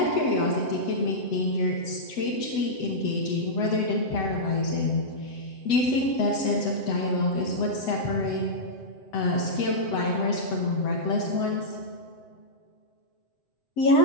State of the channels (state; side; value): late; right; 7.9 ms